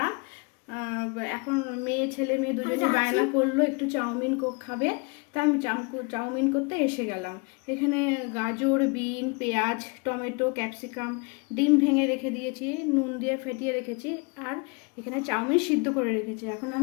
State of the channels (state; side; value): quieter; right; 31.1 dB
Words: এখন ছেলে মেয়ে দুজনে বায়না করলো একটু চাউমিন খাবে, তা আমি চাউমিন করতে এসে গেলাম। এখানে গাজর, বিন, পেঁয়াজ, টমেটো, ক্যাপসিকাম, ডিম ভেঙে রেখে দিয়েছি, নুন দিয়ে ফেটিয়ে রেখেছি, আর এখানে চাউমিন সিদ্ধ করে রেখেছি। এখন